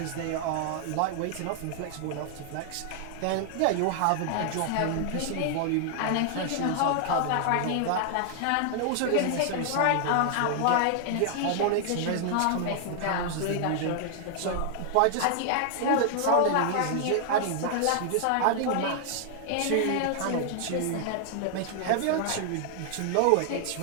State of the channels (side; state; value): both; different; correlation 0.00